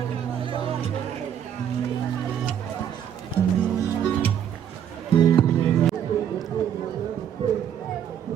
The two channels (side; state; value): left; quieter; 9.3 dB